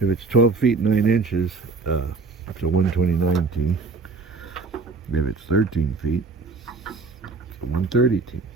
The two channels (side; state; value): left; quieter; 4.1 dB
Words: it's 12 feet 9 inches, it's a 129T. If it's 13 feet, it's a 130T.